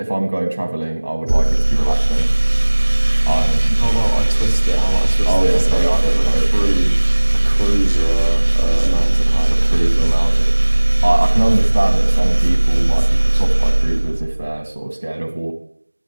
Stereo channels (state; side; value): inverted; both; correlation -1.00